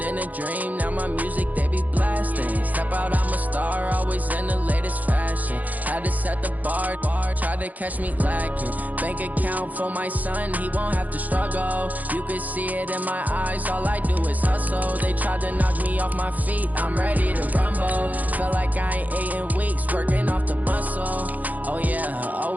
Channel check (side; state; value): left; late; 0.080 ms